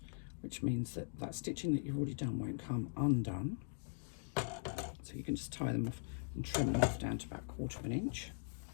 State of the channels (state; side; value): silent; right; digital silence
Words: which means that that stitching that you've already done won't come undone. So you can just tie them off and trim them off down to about 1/4 of an inch.